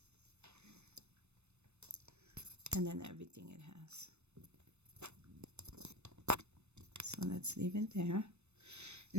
And then everything it has. So let's leave it there.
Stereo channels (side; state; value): left; late; 0.81 ms